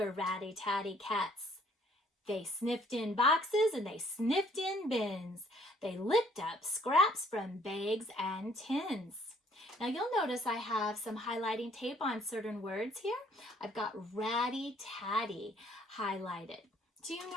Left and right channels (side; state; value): both; normal; correlation 0.61